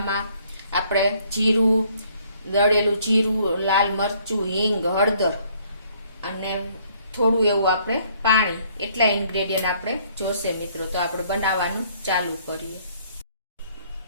આપણે જીરું, દળેલું જીરું, લાલ મરચું, હિંગ, હળદર અને થોડું એવું આપણે પાણી, એટલા ઇન્ગ્રેડિયન્ટ આપણે જોશે મિત્રો। તો આપણે બનાવવાનું ચાલુ કરીએ।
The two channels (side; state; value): both; inverted; correlation -0.63